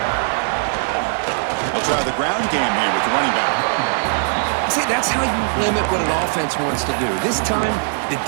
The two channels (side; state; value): left; silent; digital silence